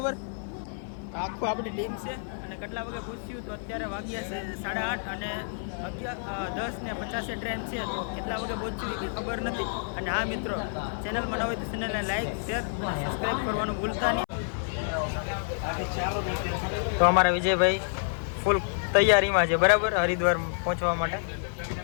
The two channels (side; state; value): right; silent; 59 dB below the other